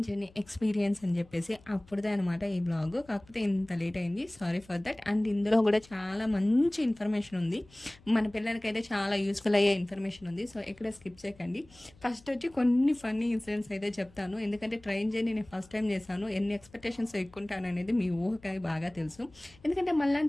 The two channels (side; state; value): left; noise; hum, 26 dB below the sound